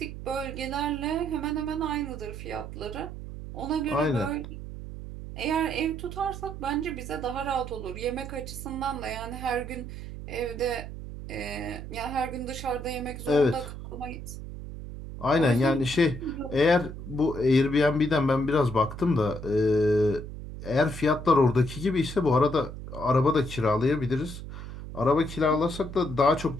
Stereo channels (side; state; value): right; noise; hum, 10 dB below the sound